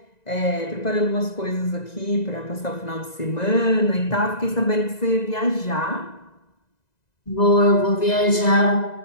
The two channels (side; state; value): right; late; 2.0 ms